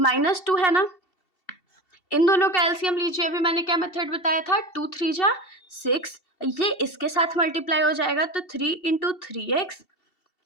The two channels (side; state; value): right; late; 2.7 ms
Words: है ना। इन दोनों का एलसीएम लीजिए। अभी मैंने क्या मेथड बताया था, 2 3 जा 6, ये इसके साथ मल्टीप्लाई हो जाएगा, तो 3 × 3x